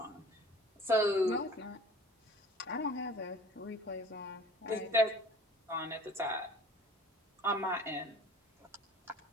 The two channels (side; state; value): both; normal; correlation 0.46